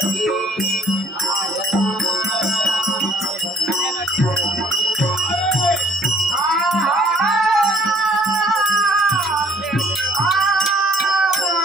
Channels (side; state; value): both; normal; correlation 0.60